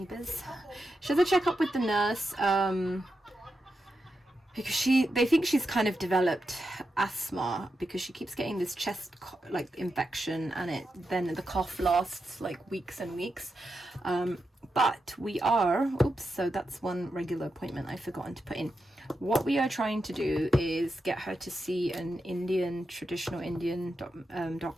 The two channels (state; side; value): normal; both; correlation 0.87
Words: She has a checkup with the nurse, because they think she's kind of developed asthma, because she keeps getting this chest like infection, and then the cough lasts like weeks and weeks. But we are, so that's one regular appointment I've forgotten to put in. What we are trying to do is get her to see an traditional Indian